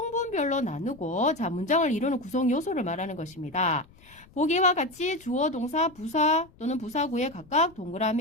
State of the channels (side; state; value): left; noise; rumble, 26 dB below the sound